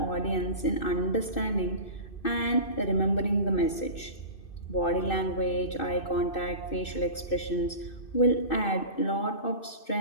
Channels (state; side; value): late; right; 2.6 ms